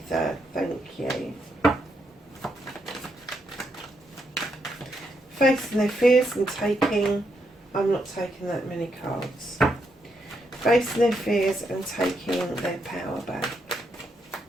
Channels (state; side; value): normal; both; correlation 0.79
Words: Thank you. Facing their fears and taking... I'm not taking that many cards. Facing their fears and taking their power back.